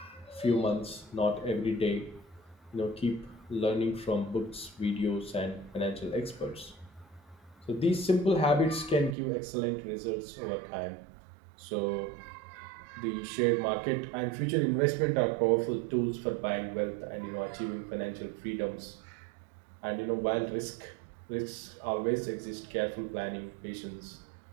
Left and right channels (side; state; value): left; drops out; at 9.2 s